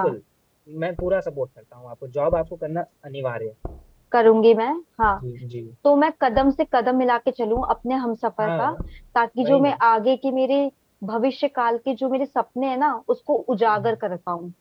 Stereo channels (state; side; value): identical; both; correlation 1.00